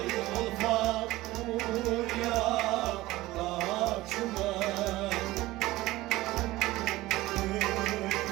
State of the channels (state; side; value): quieter; left; 18.1 dB